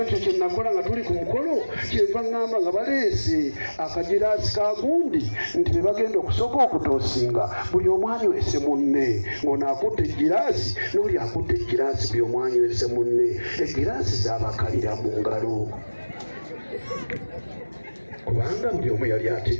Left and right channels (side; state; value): both; inverted; correlation -1.00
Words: kye nakola nga tuli ku mukolo kyenva ŋŋamba nga baleese akagiraasi ka gundi nti be bagenda okusooka okutoosinga buli omu anywese munne ng'ono akutte egiraasi n'oli akutte egiraasi buli omu anywese munne egiraasi zaabakalira mu ngalo kubanga buli omu yali